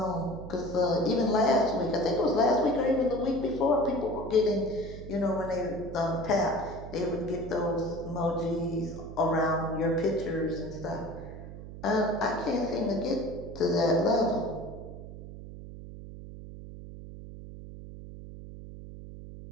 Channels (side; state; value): right; noise; hum, 12 dB below the sound